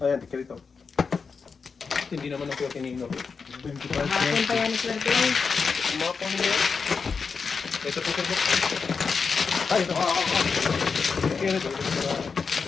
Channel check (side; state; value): right; quieter; 5.2 dB